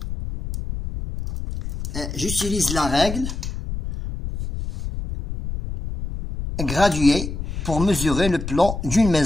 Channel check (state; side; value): noise; left; rumble, 6 dB below the sound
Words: j'utilise la règle graduée pour mesurer le plan d'une